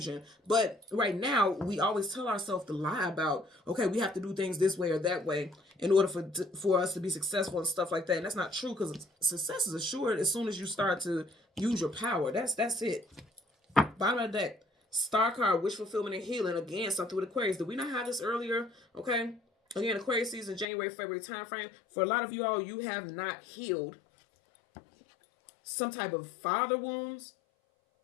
But right now, we always tell ourselves to lie about, okay, we have to do things this way or that way in order for us to be successful and stuff like that. And that's not true, because success is assured as soon as you start to use your power. That's it. Bottom of the deck. Star card, wish fulfillment and healing. Again, something with Aquarius. Did we not have this earlier? Okay. Again, Aquarius season, January, February time frame. For a lot of you all, you have not healed some type of father wounds.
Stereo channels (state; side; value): drops out; right; at 20.7 s